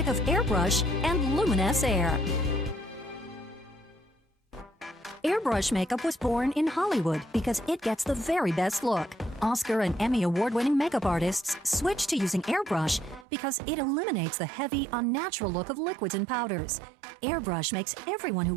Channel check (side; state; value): left; drops out; at 13.2 s